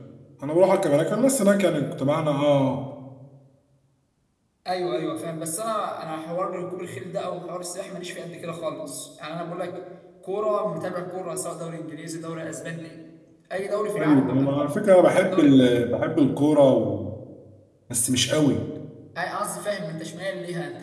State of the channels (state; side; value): identical; both; correlation 1.00